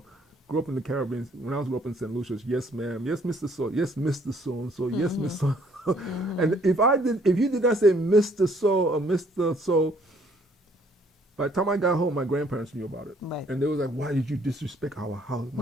grew up in the Caribbean. When I was up in St. Lucia, yes, ma'am, yes, Mr. So, yes, Mr. So and so, yes, Mr. So. And if you did not say Mr. So or Mr. So, by the time I got home, my grandparents knew about it, and they was like, "Why did you disrespect our house,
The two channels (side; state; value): both; normal; correlation 0.63